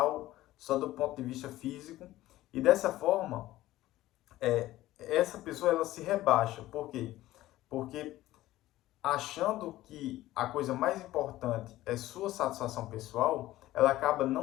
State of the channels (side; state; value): right; quieter; 15.7 dB